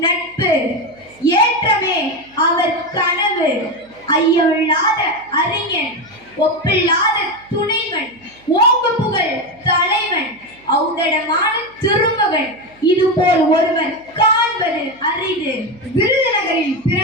நட்பு, ஏற்றமே அவர் கனவு, ஐயமில்லாத அறிஞன், ஒப்பில்லாத துணைவன், ஓங்கு புகழ் தலைவன், ஔதடமான திருமகன், இதுபோல் ஒருவர் காண்பது அரிது. விருதுநகரில்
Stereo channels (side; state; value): right; noise; hum, 29 dB below the sound